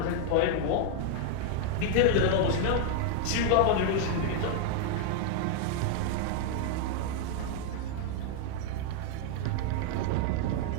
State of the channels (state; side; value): different; both; correlation 0.00